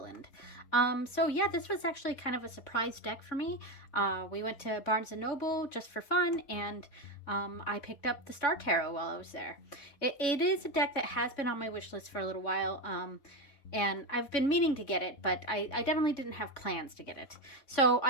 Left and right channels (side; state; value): right; late; 3.6 ms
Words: So yeah, this was actually kind of a surprise deck for me. We went to Barnes & Noble just for fun, and I picked up the Star Tarot while I was there. It is a deck that has been on my wish list for a little while, and I've been meaning to get it, but I definitely didn't have plans to get it. So